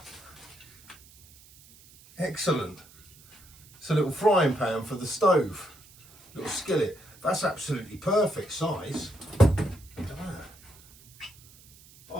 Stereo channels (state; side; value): noise; right; hiss, 24 dB below the sound